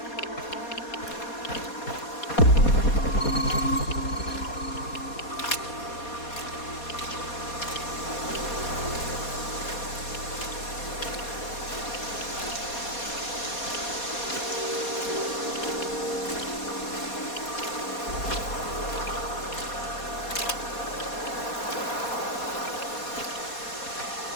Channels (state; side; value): late; right; 4.2 ms